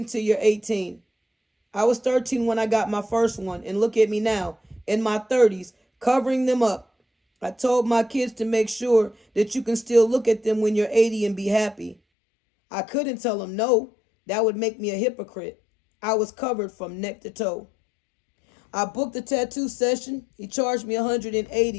you're 18. I was 13 when I got my first one, and look at me now, in my 30s, covering them up. I told my kids to make sure that you can still look at them when you're 80 and be happy. I couldn't tell them no. That would make me a hypocrite. I was covered from neck to toe. I booked a tattoo session. He charged me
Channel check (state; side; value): drops out; right; at 12.0 s